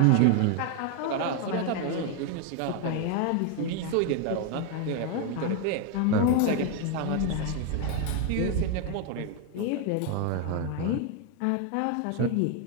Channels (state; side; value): different; both; correlation 0.01